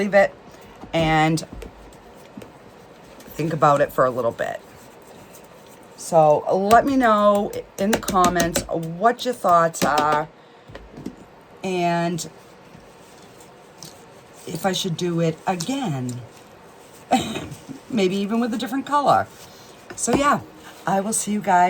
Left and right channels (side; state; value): both; identical; correlation 1.00